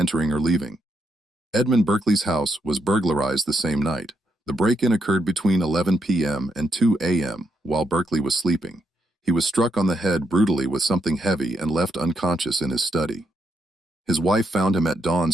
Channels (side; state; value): both; normal; correlation 0.79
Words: or leaving. Edmund Berkeley's house was burglarized the same night. The break-in occurred between 11 p.m. and 2 a.m. while Berkeley was sleeping. He was struck on the head brutally with something heavy and left unconscious in his study. His wife found him at dawn